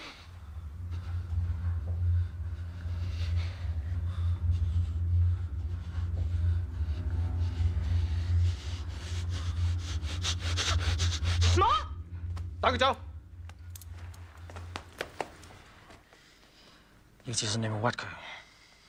打佢走！要自信你冇屈佢，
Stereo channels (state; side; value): identical; both; correlation 1.00